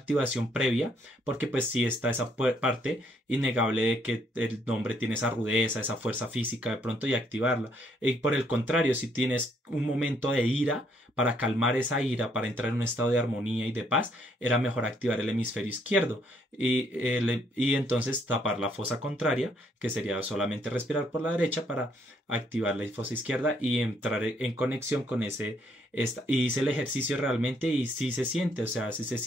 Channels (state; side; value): normal; both; correlation 0.70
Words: previa, porque pues sí está esa parte innegable de que el hombre tiene esa rudeza, esa fuerza física de pronto y activarla. Y por el contrario, si tienes un momento de ira, para calmar esa ira, para entrar en un estado de armonía y de paz, era mejor activar el hemisferio izquierdo y entonces tapar la fosa contraria, que sería solamente respirar por la derecha para activar la fosa izquierda y entrar en conexión con y hice el ejercicio realmente y sí se siente, o sea, sí se